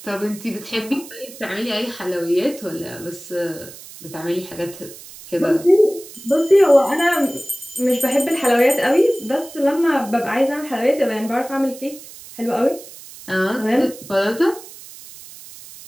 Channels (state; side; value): noise; right; hiss, 17 dB below the sound